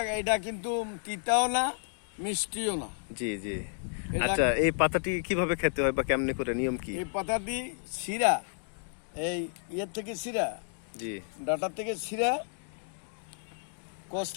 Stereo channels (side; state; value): right; silent; digital silence